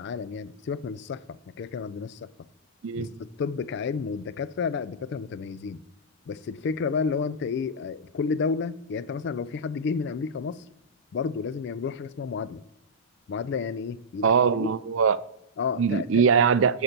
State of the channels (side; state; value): both; normal; correlation -0.12